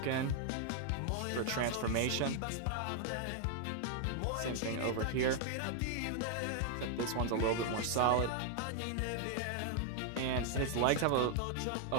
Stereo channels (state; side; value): different; both; correlation 0.00